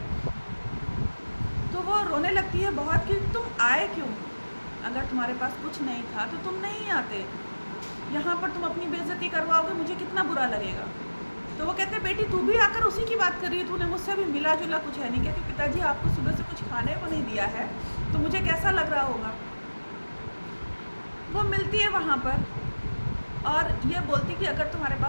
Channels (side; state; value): both; inverted; correlation -1.00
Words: तो वो रोने लगती है बहुत कि तुम आए क्यों, अगर तुम्हारे पास कुछ नहीं था तो तुम नहीं आते, यहाँ पर तुम अपनी बेइज्जती करवाओगे, मुझे कितना बुरा लगेगा। तो वो कहते बेटी तू भी आकर उसी की बात कर रही है, तूने मुझसे भी मिला जुला कुछ है नहीं। कहती पिताजी आपको सुबह से कुछ खाने को नहीं दिया है तो मुझे कैसा लग रहा होगा। वो मिलती है वहाँ पर और ये बोलती कि अगर तुम्हारे